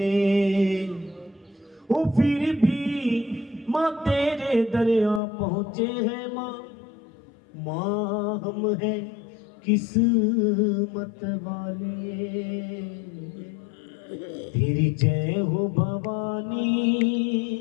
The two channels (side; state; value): right; drops out; at 5.2 s